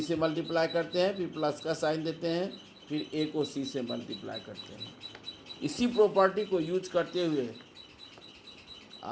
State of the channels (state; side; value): identical; both; correlation 1.00